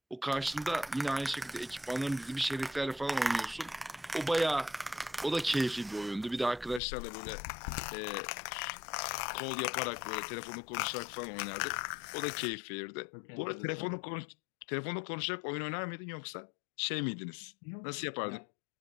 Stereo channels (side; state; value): right; drops out; at 6.8 s